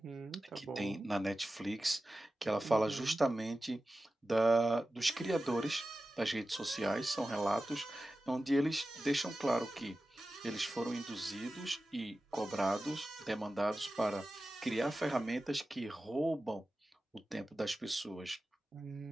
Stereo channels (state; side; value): normal; both; correlation 0.94